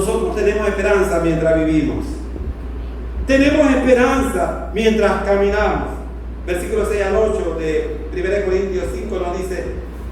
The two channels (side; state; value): both; identical; correlation 1.00